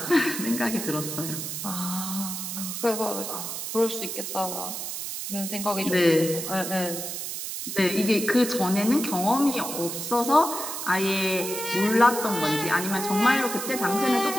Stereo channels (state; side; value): noise; right; hiss, 5 dB below the sound